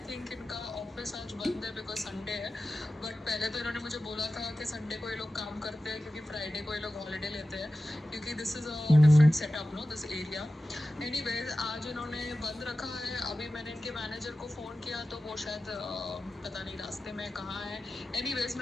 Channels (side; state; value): both; normal; correlation 0.94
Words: थिंक इनका ऑफिस आज बंद है बिकॉज संडे है। बट पहले तो इन्होंने मुझे बोला था कि संडे को ये लोग काम करते हैं क्योंकि फ्राइडे को ये लोग हॉलीडे लेते हैं, क्योंकि this is a different setup no this area. Anyways आज इन्होंने बंद रखा है। अभी मैंने इनके मैनेजर को फ़ोन किया तो वो शायद पता नहीं रास्ते में कहाँ है। एनीवेज